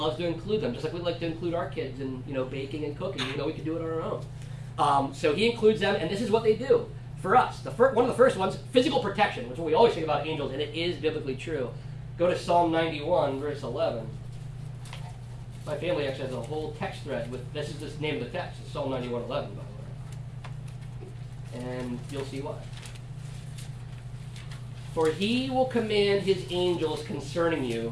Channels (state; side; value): identical; both; correlation 1.00